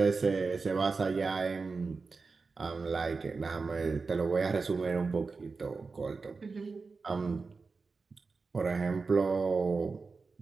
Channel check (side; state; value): left; quieter; 4.4 dB